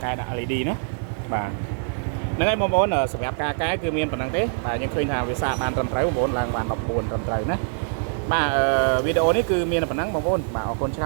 កែដាក់ LED ណាបាទហ្នឹងហើយបងប្អូនសម្រាប់ការកែគឺមានប៉ុណ្ណឹងទេបាទយើងឃើញថាវាសាកបានត្រឹមត្រូវបងប្អូនឡើងបាន14ត្រឹមត្រូវណាបាទវីដេអូនេះគឺមានប៉ុណ្ណឹងបងប្អូនបាទអរគុណច្រ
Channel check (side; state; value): left; silent; 63 dB below the other